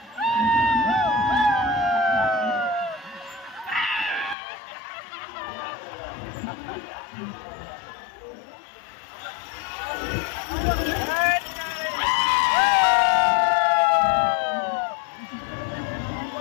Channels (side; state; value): right; drops out; at 4.4 s